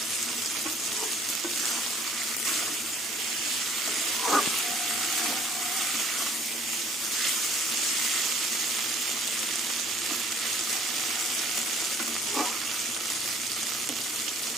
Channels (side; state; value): both; normal; correlation 0.54